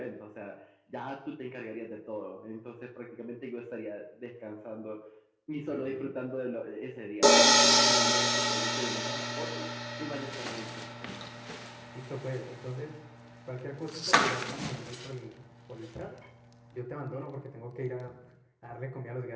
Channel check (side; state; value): both; identical; correlation 1.00